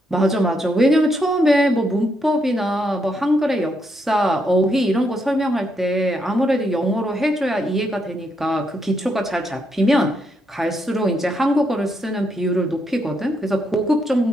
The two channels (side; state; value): both; normal; correlation 0.78